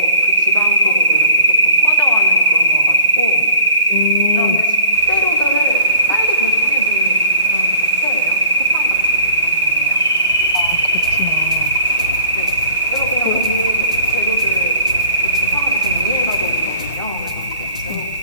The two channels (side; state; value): both; inverted; correlation -0.44